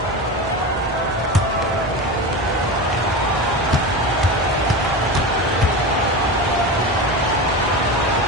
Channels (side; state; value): both; normal; correlation 0.24